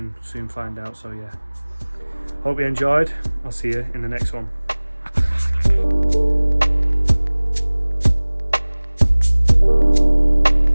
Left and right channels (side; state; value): both; inverted; correlation -1.00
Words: find out. So yeah, hope you enjoyed. I'll see you in the next one.